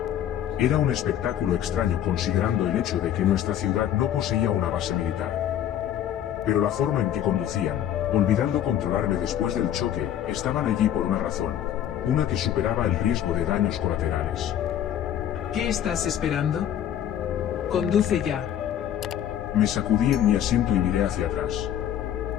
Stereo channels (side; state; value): right; quieter; 10.6 dB